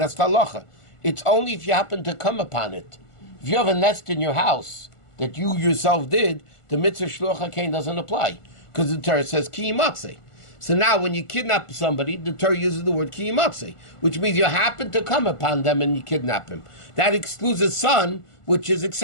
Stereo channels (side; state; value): right; late; 1.4 ms